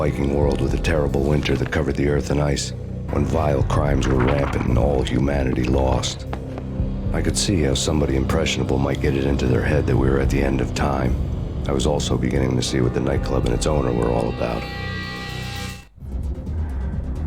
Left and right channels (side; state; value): both; identical; correlation 1.00